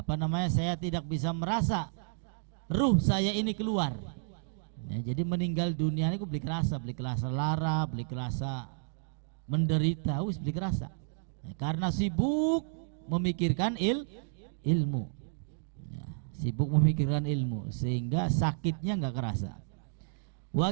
saya tidak bisa merasa ruh saya ini keluar. Ya, jadi meninggal dunia ini beli kerasa lara, beli kerasa menderita, beli kerasa. Ya, karena sibuk memikirkan ilmu. Ya, sibuk memikirkan ilmu sehingga sakitnya nggak kerasa.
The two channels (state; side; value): silent; left; digital silence